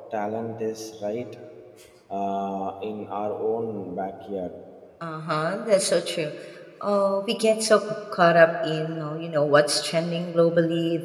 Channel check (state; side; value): identical; both; correlation 1.00